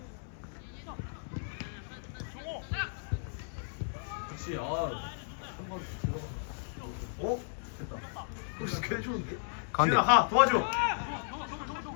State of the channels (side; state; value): right; silent; 55 dB below the other